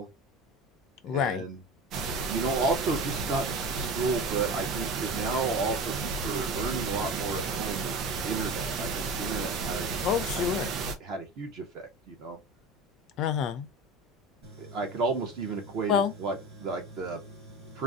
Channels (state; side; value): normal; both; correlation 0.31